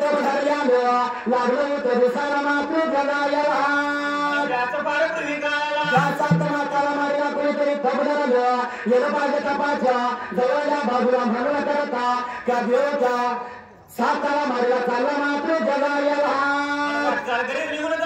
धरल्यानं लागलं होतं दिसायला मात्र जगायला त्याचं फार पूर्वी काळाला ज्याचा माताला मारला कुणीतरी तब धरलं येणं पाहिजे तपाच्या जवळल्या बाजूला म्हणून करता त्या देवच्या साताला मारला चालला मात्र जगायला घरी निघून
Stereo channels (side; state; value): both; identical; correlation 1.00